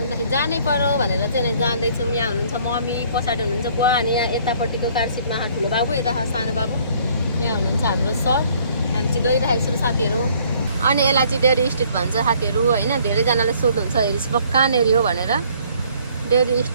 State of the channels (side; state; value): both; inverted; correlation -0.60